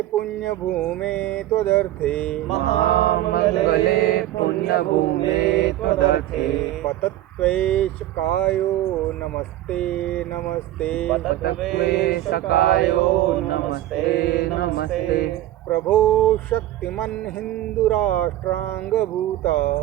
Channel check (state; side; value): quieter; left; 14.2 dB